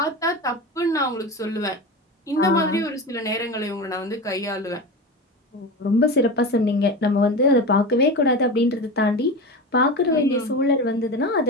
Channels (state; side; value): normal; both; correlation 0.26